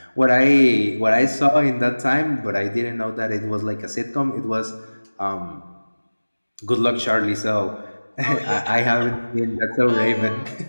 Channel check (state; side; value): inverted; both; correlation -1.00